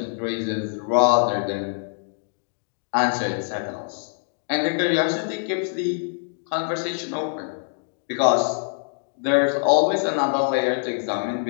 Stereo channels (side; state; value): right; silent; digital silence